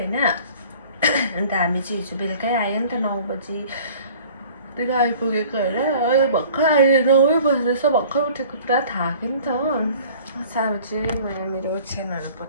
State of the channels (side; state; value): both; inverted; correlation -0.48